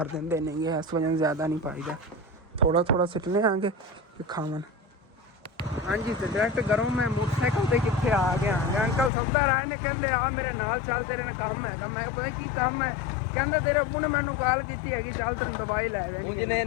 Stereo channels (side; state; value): right; drops out; at 9.1 s